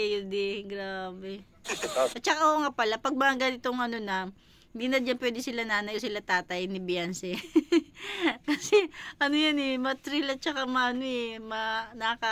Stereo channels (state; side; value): identical; both; correlation 1.00